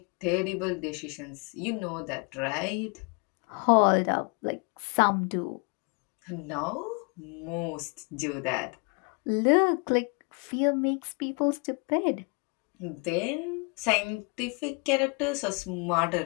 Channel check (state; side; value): quieter; right; 34.1 dB